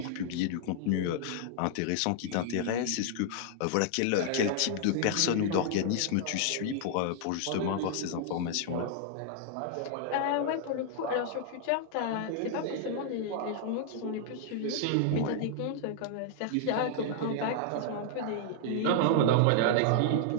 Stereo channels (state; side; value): different; both; correlation 0.00